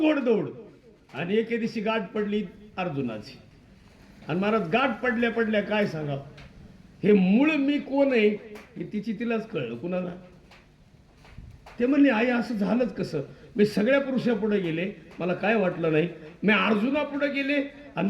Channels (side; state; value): both; identical; correlation 1.00